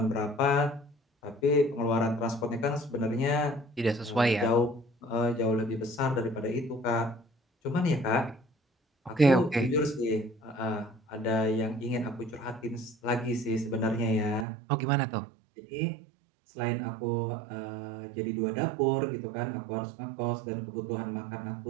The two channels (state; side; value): drops out; left; at 14.5 s